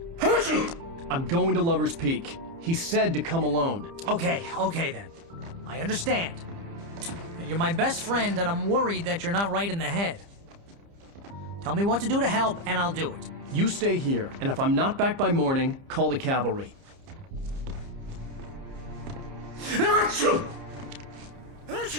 I'm going to Lover's Peak. He said to come alone. Okay then. I understand. You're my best friend, and I'm worried that you're not right in the head. Tell me what to do to help, and I'll do it. You stay here, and if I'm not back by morning, call the cavalry. Achoo!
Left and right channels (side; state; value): left; late; 30 ms